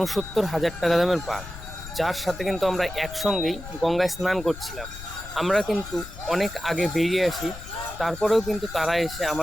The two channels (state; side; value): noise; left; rumble, 13 dB below the sound